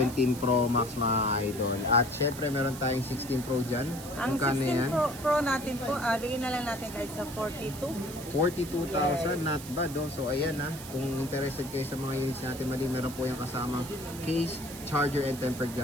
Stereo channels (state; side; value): noise; right; hiss, 13 dB below the sound